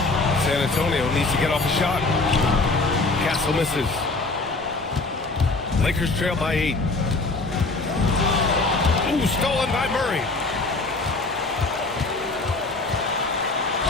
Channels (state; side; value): quieter; right; 3.4 dB